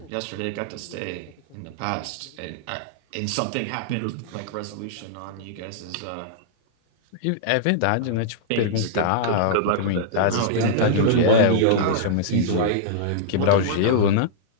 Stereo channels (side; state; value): both; different; correlation -0.02